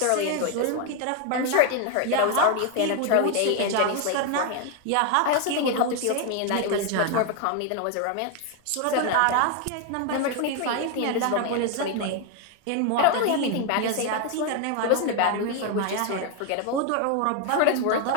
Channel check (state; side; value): different; both; correlation 0.01